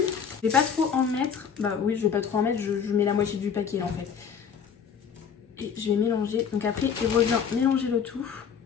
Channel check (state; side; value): quieter; right; 7.1 dB